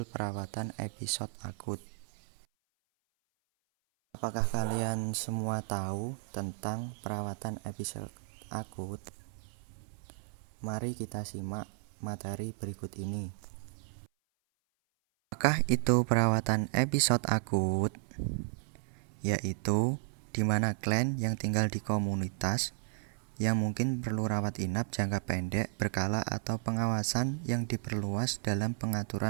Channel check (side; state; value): left; silent; 55 dB below the other